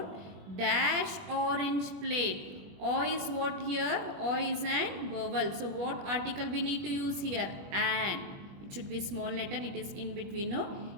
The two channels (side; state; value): left; late; 21 ms